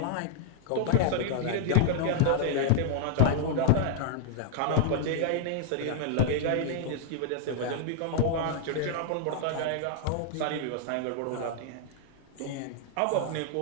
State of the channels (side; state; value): both; different; correlation 0.00